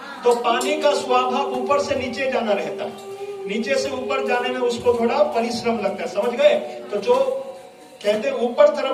तो पानी का स्वभाव ऊपर से नीचे जाना रहता है, नीचे से ऊपर जाने में उसको थोड़ा परिश्रम लगता है, समझ गए। तो जो कहते हैं ऊपर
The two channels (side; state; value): both; identical; correlation 1.00